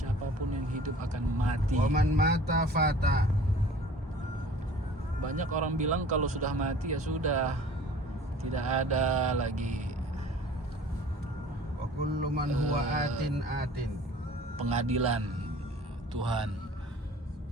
yang hidup akan mati. Wa man mata fata. Banyak orang bilang kalau sudah mati ya sudah, tidak ada lagi Wa kullu man huwa atin pengadilan Tuhan.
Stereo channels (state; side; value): normal; both; correlation 0.47